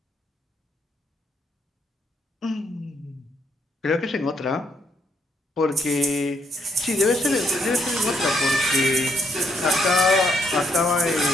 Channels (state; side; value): normal; both; correlation 0.73